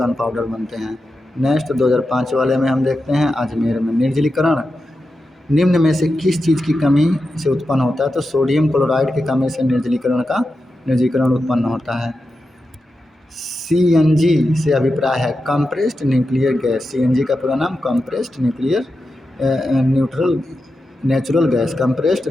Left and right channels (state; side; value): normal; both; correlation 0.90